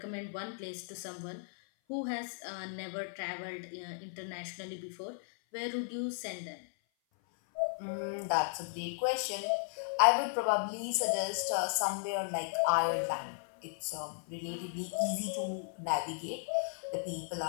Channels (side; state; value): right; silent; 54 dB below the other